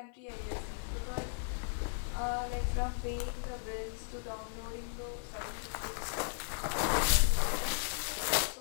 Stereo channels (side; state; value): right; silent; 54 dB below the other